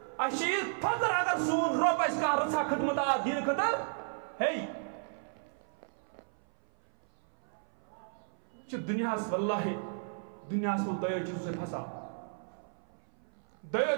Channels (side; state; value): left; silent; 56 dB below the other